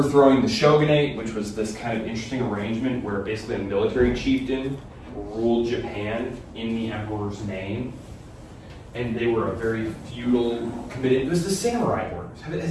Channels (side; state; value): both; identical; correlation 1.00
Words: the shogunate, which was this kind of interesting arrangement where basically a military chieftain ruled Japan in the emperor's name. And they were a very feudal, committed, it was the samurai orders.